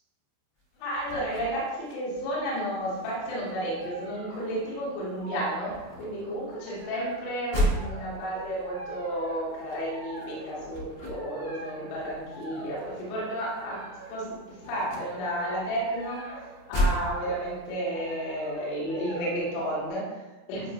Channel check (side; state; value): right; late; 28 ms